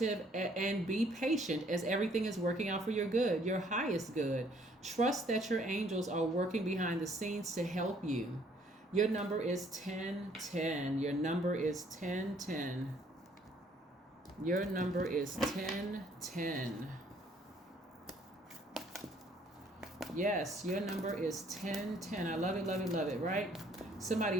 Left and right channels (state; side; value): normal; both; correlation 0.62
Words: and be patient as everything is working out for your good, your highest good. Trust that your angels are working behind the scenes to help you. Your number is 10-10. Your number is 10-10. Your number is 10-10. Yes, your number is 10-10. I love it, love it, love it, right?